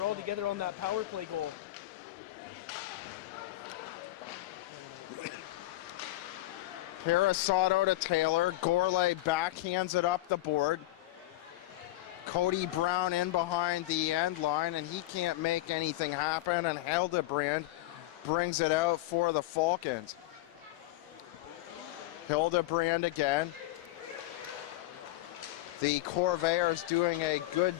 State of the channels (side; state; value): right; quieter; 16.7 dB